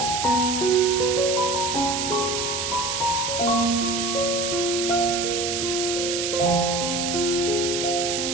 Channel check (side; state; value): right; noise; hiss, 2 dB below the sound